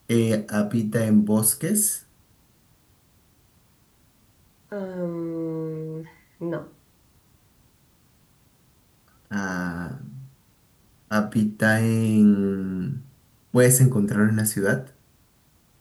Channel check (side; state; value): both; identical; correlation 1.00